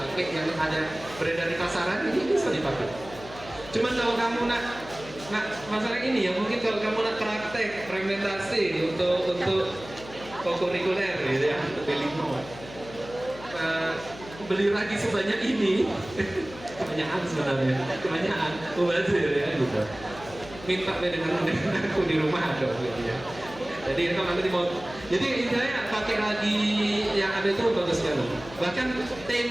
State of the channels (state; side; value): noise; left; hum, 16 dB below the sound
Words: yang ada beredar di pasaran, ini bisa dipakai. Cuman kalau kamu nak masalah ini ya, mungkin kalau kamu nak praktek fermentasi untuk kokurikuler gitu ya, untuk limo, beli ragi sebanyak ini, kebanyakan sebenarnya, kebanyakan mubazir ya gitu. Minta dengan aku di rumah ada gitu ya. Jadi itu nanti mau. Jadi intinya pakai ragi yang ada itu bagus sekali. Bahkan